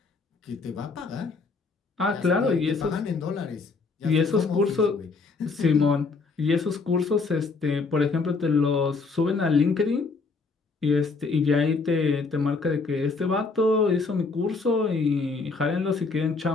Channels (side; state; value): right; quieter; 4.2 dB